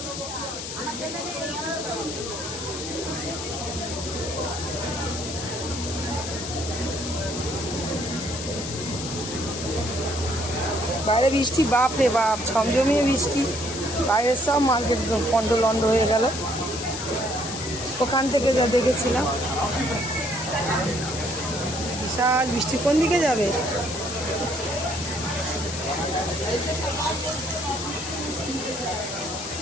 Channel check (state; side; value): noise; left; hiss, 7 dB below the sound